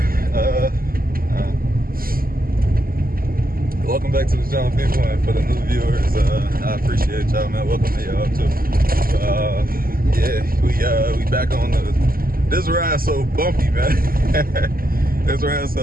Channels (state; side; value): late; left; 0.42 ms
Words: welcome back to the channel, people, and for the new viewers, I appreciate y'all, man. Welcome to y'all too. Yeah, we back on this ride so bumpy, man. This ride